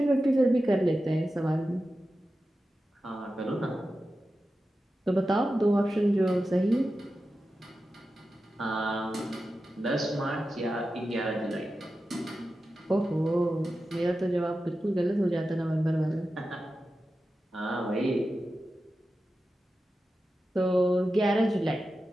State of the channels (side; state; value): both; normal; correlation 0.92